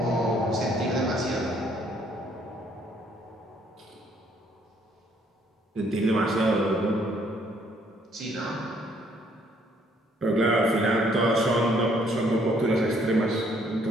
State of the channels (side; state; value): both; normal; correlation 0.66